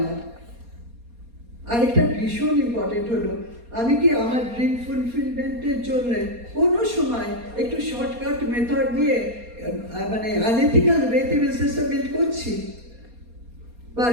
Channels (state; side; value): late; left; 4.2 ms